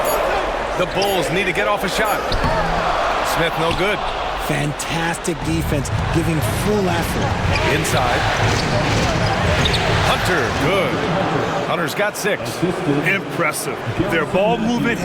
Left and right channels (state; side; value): identical; both; correlation 1.00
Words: The Bulls need to get off a shot. Smith no good. Fantastic defense, giving full effort. Inside. Hunter, good. Hunter's got 6. Impressive. Their ball movement